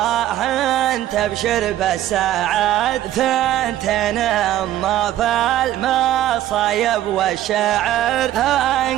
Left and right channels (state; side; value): quieter; left; 13.1 dB